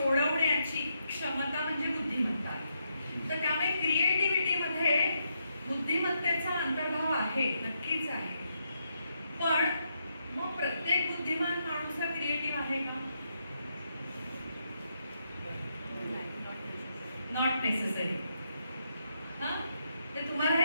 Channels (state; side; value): inverted; both; correlation -0.80